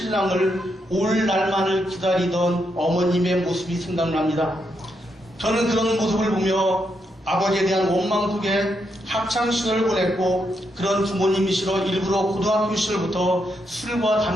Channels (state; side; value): normal; both; correlation 0.81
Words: 올 날만을 기다리던 어머님의 모습이 생각납니다. 저는 그런 모습을 보며 아버지에 대한 원망 속에 학창시절을 보냈고 그런 부모님이시러 일부러 고등학교 시절부터 술과